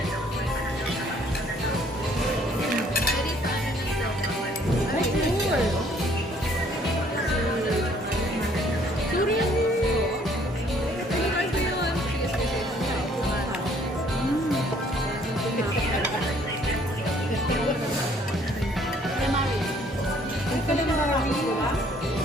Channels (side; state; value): both; normal; correlation 0.61